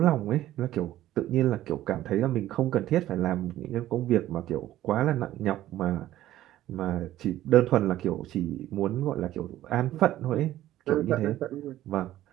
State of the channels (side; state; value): left; quieter; 14.0 dB